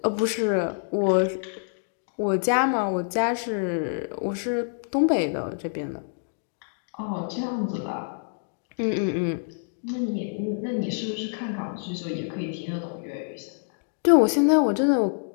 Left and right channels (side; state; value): right; silent; digital silence